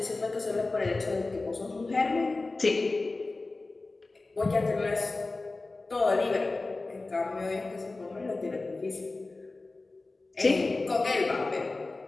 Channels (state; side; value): quieter; right; 3.4 dB